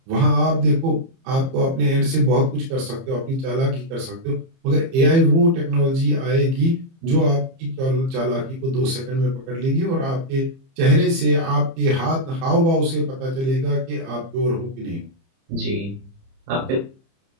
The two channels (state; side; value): late; left; 30 ms